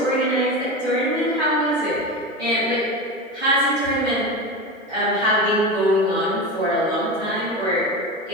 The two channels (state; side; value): normal; both; correlation 0.24